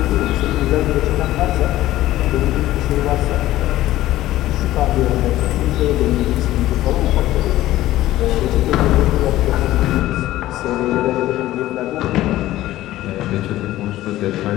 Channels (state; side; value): quieter; right; 15.2 dB